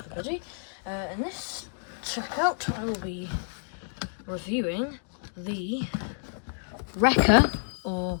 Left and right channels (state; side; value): silent; right; digital silence